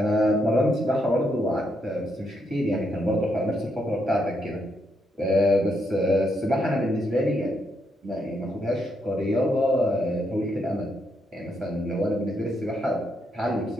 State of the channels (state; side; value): normal; both; correlation 0.78